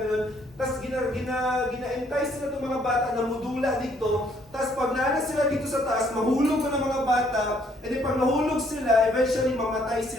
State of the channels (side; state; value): both; normal; correlation 0.66